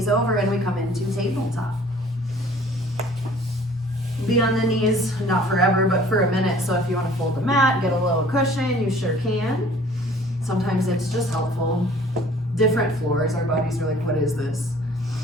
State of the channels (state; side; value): normal; both; correlation 0.52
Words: over, and we come into tabletop. Be on the knees, not forever, but for a minute. So if you want to fold the mat, get a little cushion, you sure can. Sometimes it's just helpful. Different floors, our bodies are like, what is this?